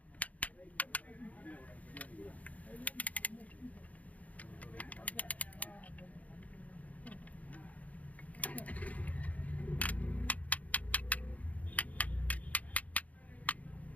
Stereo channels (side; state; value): right; late; 0.071 ms